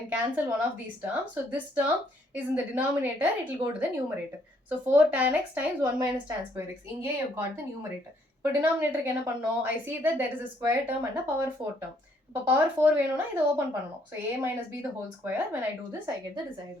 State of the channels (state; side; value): normal; both; correlation 0.68